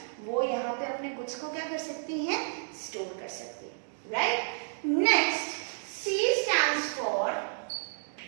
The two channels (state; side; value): silent; left; digital silence